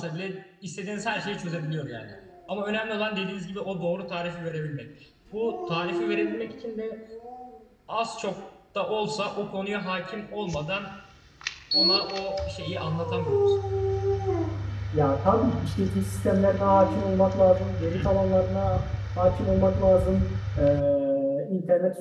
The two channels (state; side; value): identical; both; correlation 1.00